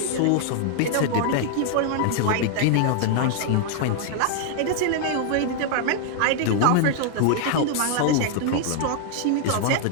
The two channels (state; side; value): different; both; correlation 0.00